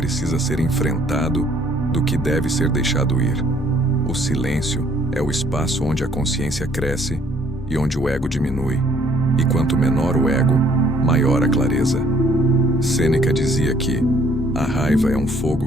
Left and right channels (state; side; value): normal; both; correlation 0.62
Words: ser enfrentado do que deve ser deixado ir. O silêncio é o espaço onde a consciência cresce e onde o ego diminui. E quanto menor o ego, maior a clareza. Sêneca dizia que a raiva é um